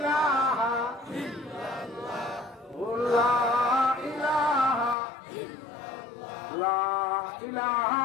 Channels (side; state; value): right; drops out; at 5.0 s